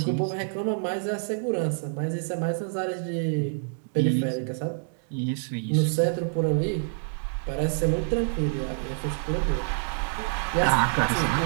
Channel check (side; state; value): left; silent; digital silence